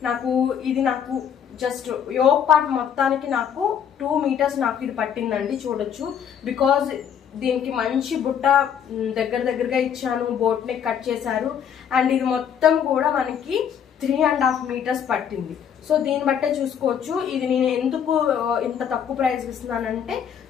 ఇది నాకు జస్ట్ యోక్ పార్ట్ మొత్తానికి నాకు 2 meters నాకు ఇది పట్టిందండి, చూడొచ్చు. బికాజ్ దీనికి మంచి బుట్ట దగ్గరగా ఇచ్చాను, బోట్ నెక్ కట్ చేశారు. అండ్ ఇది మొత్తం కూడా మనకి 3.5 meters పట్టింది. సో దీన్ని బట్టే చూసుకోవచ్చు. ఇది నేను ఎందుకు ఇంత తక్కువ ప్రైస్ ఇస్తున్నానంటే,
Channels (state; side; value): quieter; right; 8.3 dB